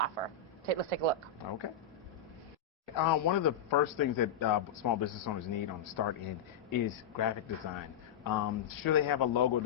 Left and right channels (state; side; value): quieter; right; 7.0 dB